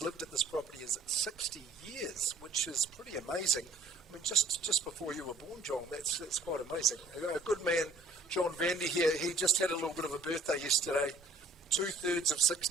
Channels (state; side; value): quieter; left; 3.1 dB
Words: lived at this property is 60 years, which is pretty amazing. I mean, just before you were born, John, that's quite amazing. A good man, John Vandy here, he just had a little bit of a birthday yesterday. 2/3 of